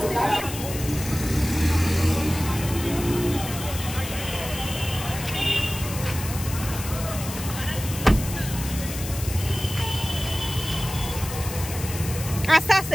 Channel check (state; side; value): noise; left; hiss, 9 dB below the sound